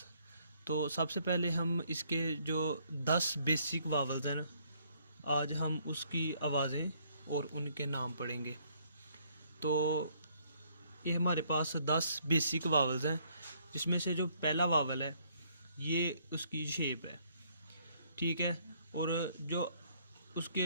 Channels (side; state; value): both; inverted; correlation -0.67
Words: तो सबसे पहले हम इसके जो 10 बेसिक वावल्स हैं ना, आज हम उसकी आवाज़ें और उनके नाम पढ़ेंगे। तो ये हमारे पास 10 बेसिक वावल्स हैं, जिसमें से जो पहला वावल है ये उसकी शेप है, ठीक है। और जो उसके